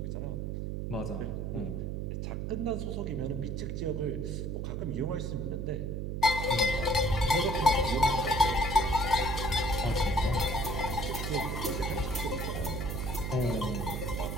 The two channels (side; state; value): right; noise; hum, 3 dB below the sound